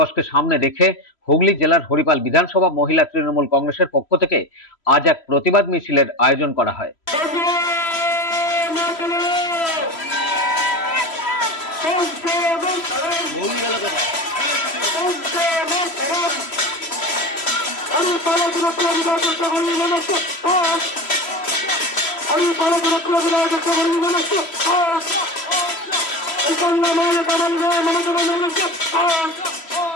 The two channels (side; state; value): right; late; 3.0 ms